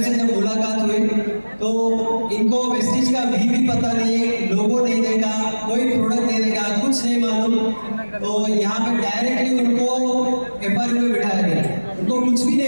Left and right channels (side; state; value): both; inverted; correlation -1.00